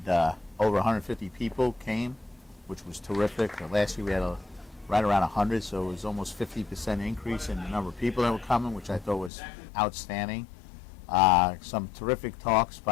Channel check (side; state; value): right; drops out; at 9.3 s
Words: over 150 people came, which was terrific. Last year we had right around 100, so it was almost 50% increase in the number of people that were coming, which I thought was outstanding. Some terrific talks